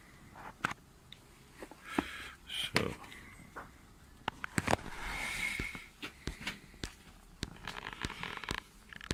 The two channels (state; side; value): identical; both; correlation 1.00